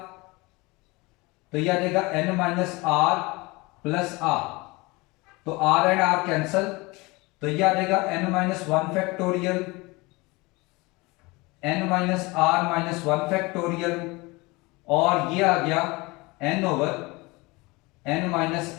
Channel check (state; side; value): quieter; right; 24.1 dB